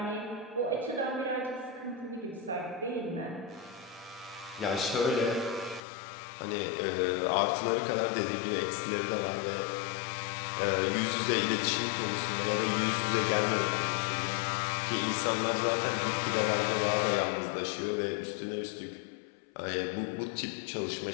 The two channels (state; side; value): drops out; right; at 5.8 s